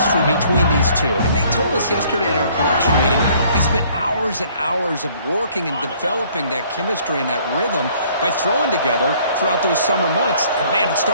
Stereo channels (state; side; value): inverted; both; correlation -0.59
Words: between these two. And they told us yesterday in our production meeting, they spent hours and hours of working and developing that chemistry and that rhythm by throwing together throughout those summer months. And man, it's